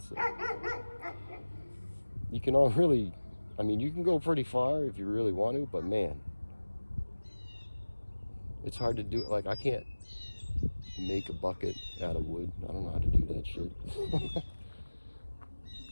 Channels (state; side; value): inverted; both; correlation -1.00